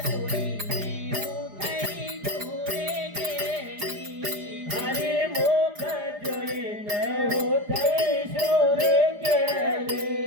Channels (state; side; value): late; left; 4.9 ms